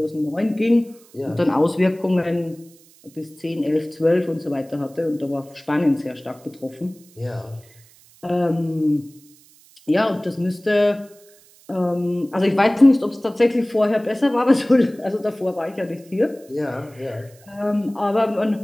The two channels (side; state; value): right; noise; hiss, 27 dB below the sound